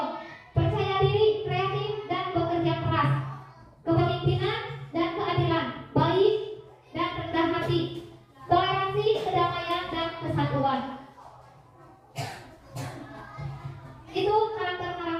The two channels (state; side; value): identical; both; correlation 1.00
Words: percaya diri, kreatif, dan bekerja keras. kasih, toleransi, kedamaian, dan kesatuan. Itu